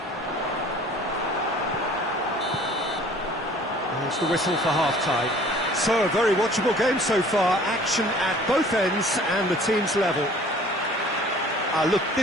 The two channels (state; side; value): normal; both; correlation 0.51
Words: There's the whistle for half-time. So a very watchable game so far. Action at both ends and the team's level. Look,